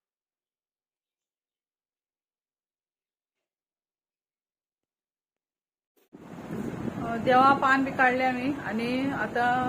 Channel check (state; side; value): identical; both; correlation 1.00